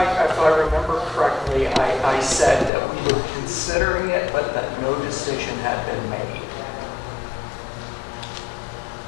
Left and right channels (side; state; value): right; drops out; at 2.7 s